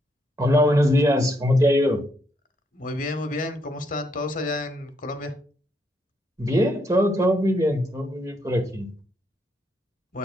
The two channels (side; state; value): both; normal; correlation 0.76